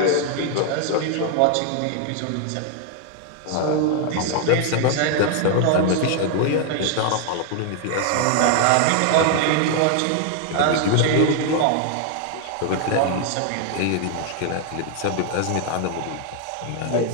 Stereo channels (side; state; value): both; different; correlation 0.00